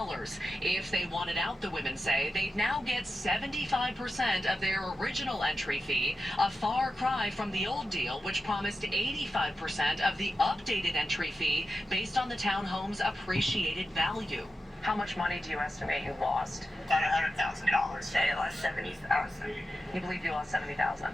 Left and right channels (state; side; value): normal; both; correlation 0.91